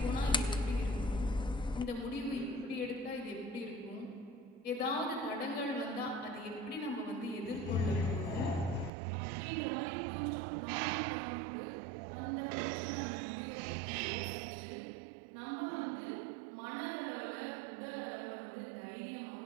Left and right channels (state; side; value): drops out; left; at 8.9 s